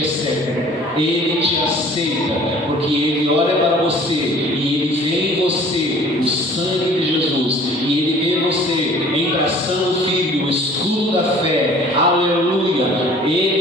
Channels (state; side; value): normal; both; correlation 0.50